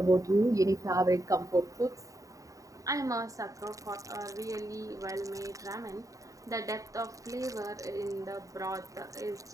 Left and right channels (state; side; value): late; left; 0.16 ms